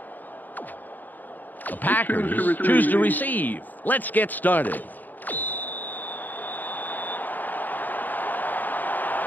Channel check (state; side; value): late; right; 0.085 ms